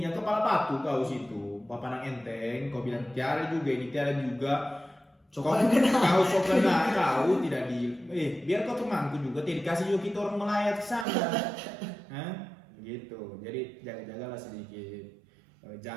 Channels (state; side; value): drops out; left; at 11.1 s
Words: kepala batu kau situ. Bapak nang enteng, kau bilang tiara juga ini tiara juga. Kau sok kena kau tidak di biar kau temanku juga tidak dikasih juga kita orang melayat ke sana. Hah? Gitu. Jadi jaga-jagalah sedikit